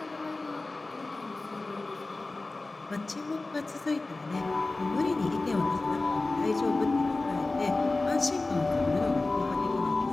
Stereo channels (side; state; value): right; quieter; 3.2 dB